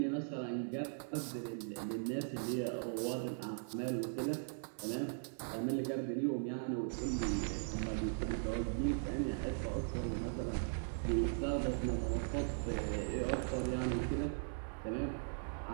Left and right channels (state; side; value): silent; left; 52 dB below the other